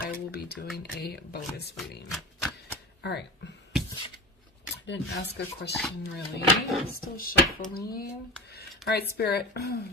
will be doing a bonus reading. All right. Didn't ask a question really. Still shuffling. All right, Spirit.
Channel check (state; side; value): normal; both; correlation 0.29